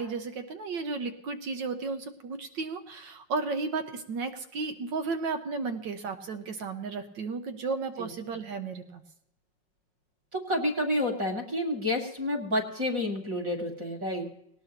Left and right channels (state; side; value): late; left; 5.5 ms